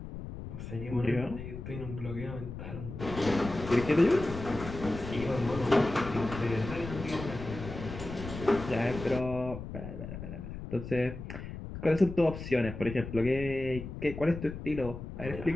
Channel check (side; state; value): left; noise; rumble, 9 dB below the sound